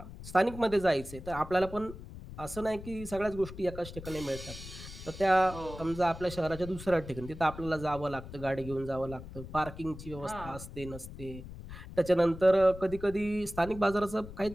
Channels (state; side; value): noise; left; rumble, 13 dB below the sound